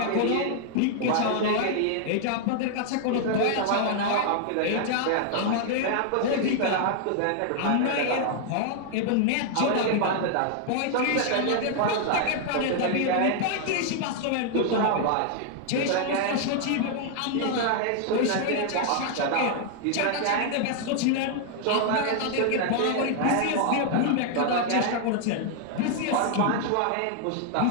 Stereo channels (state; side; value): different; both; correlation 0.00